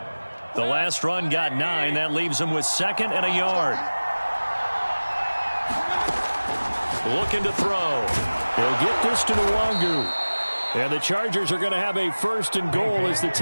The last run got 9. That leaves him with 2nd and a yard. Looking to throw. He'll get this to Nwangu. And the Chargers are going to have a 1st and goal as the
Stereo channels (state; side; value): inverted; both; correlation -1.00